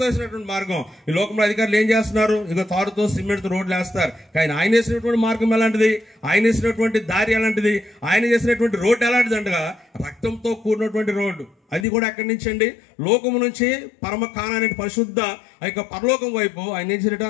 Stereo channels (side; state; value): right; drops out; at 11.9 s